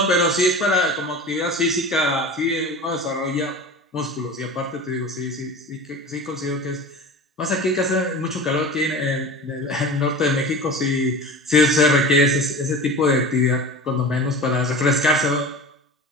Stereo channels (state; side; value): normal; both; correlation 0.34